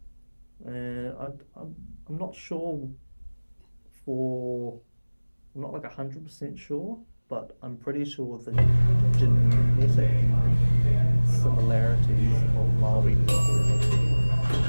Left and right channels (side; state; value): both; inverted; correlation -1.00